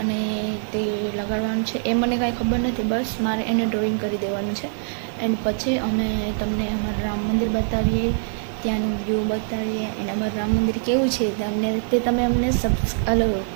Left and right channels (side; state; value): left; silent; digital silence